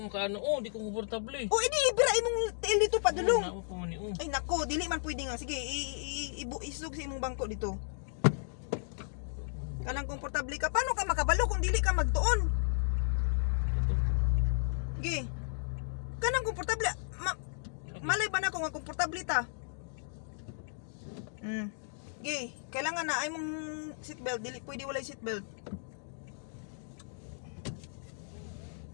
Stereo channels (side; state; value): right; silent; digital silence